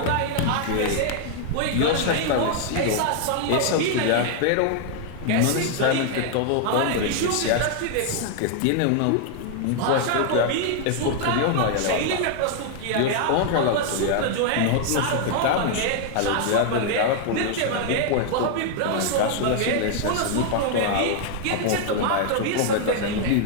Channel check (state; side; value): different; both; correlation 0.00